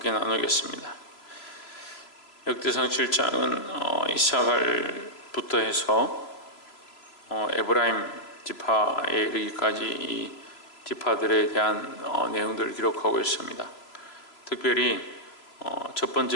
나누겠습니다. 역대상 7장은 이사갈부터 해서 에브라임 지파에 이르기까지 이 지파들에 대한 내용들을 기록하고 있습니다. 특별히 첫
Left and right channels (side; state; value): right; late; 3.0 ms